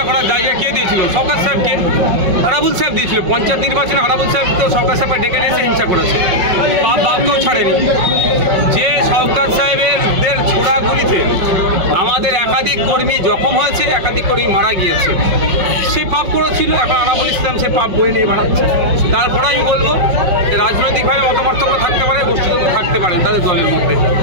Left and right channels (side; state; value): left; late; 5.4 ms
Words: করার জায়গা কে দিয়েছিল? সরকার সাহেবকে, আরাবুল সাহেব দিয়েছিল। পঞ্চায়েত নির্বাচনে আরাবুল সাহেব তো সরকার সাহেবকে ডেকে নিয়ে এসে হিংসা করেছে, বাপকেও ছাড়েনি। যে সরকার সাহেবের ছোড়াগুলিতে আমাদের একাধিক কর্মী জখম হয়েছে, একাধিক কর্মী মারা গিয়েছে, সে পাপ করেছিল। এখন আরাবুল ইসলাম সে পাপ বয়ে নিয়ে বাড়াচ্ছে। তারপরে আমি বলবো রাজনৈতিকভাবে মতপার্থক্য থাকতে পারে, গোষ্ঠীতন্ত্র থাকতে পারে তাদের দলের মধ্যে,